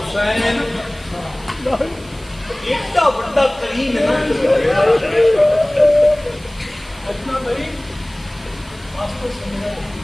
इतना बड़ा करीम है ना, इतना करीम वास्तव समझा।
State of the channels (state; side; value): noise; right; hiss, 24 dB below the sound